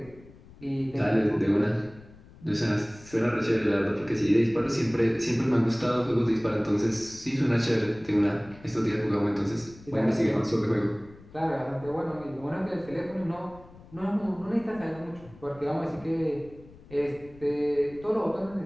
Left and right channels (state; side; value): noise; left; rumble, 22 dB below the sound